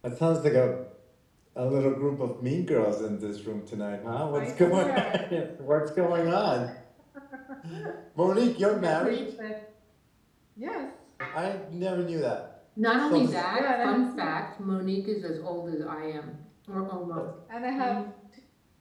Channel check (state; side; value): identical; both; correlation 1.00